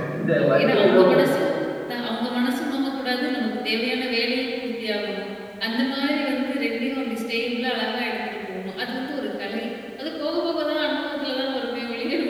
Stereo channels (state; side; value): identical; both; correlation 1.00